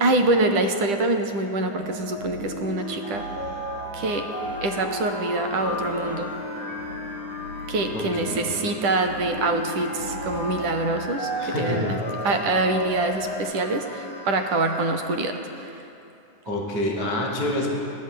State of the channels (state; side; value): late; left; 10 ms